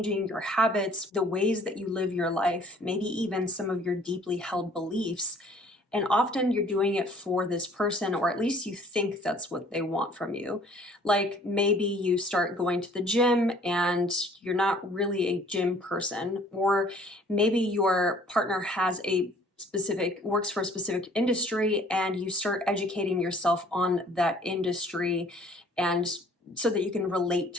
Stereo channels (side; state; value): both; normal; correlation 0.56